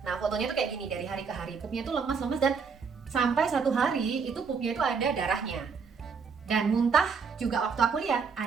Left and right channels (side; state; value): left; quieter; 5.6 dB